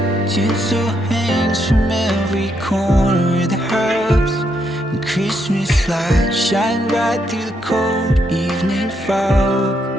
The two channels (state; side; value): normal; both; correlation 0.77